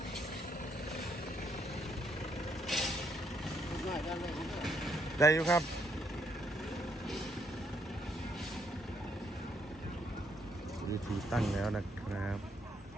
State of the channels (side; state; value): both; normal; correlation 0.73